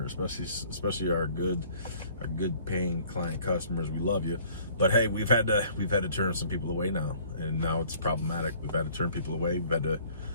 especially our good paying client customers. We love you, but hey, we've had to turn some people away now, and now it's problematic. We've had to turn people away.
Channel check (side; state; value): both; inverted; correlation -0.56